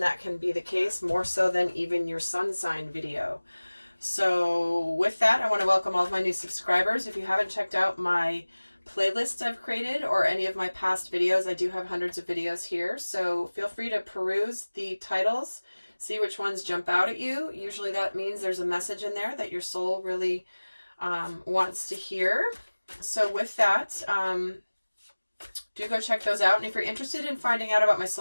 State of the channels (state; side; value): inverted; both; correlation -1.00